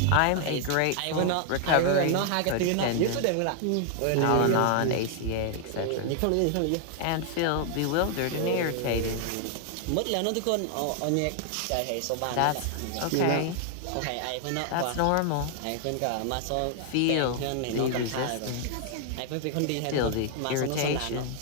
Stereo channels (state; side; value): different; both; correlation 0.00